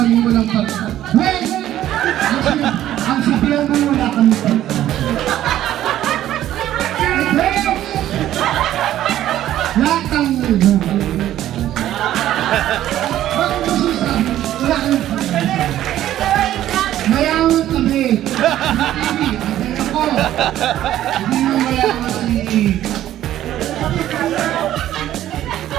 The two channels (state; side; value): quieter; left; 12.8 dB